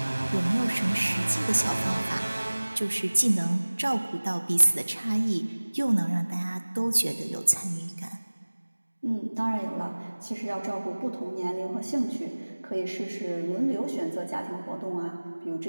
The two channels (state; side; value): inverted; both; correlation -1.00